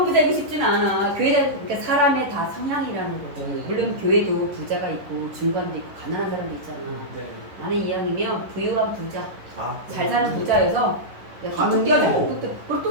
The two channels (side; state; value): left; late; 10 ms